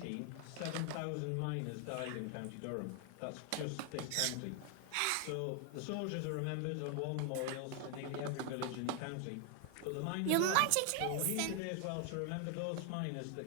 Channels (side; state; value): both; different; correlation 0.00